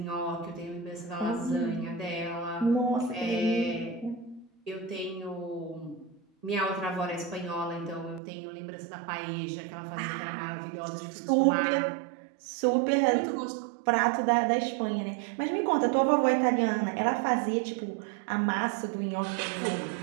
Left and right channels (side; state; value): left; drops out; at 8.2 s